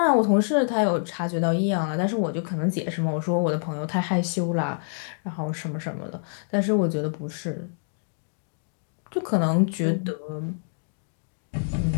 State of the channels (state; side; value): silent; right; digital silence